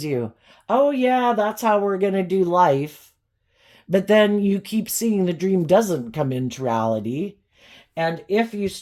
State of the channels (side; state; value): both; identical; correlation 1.00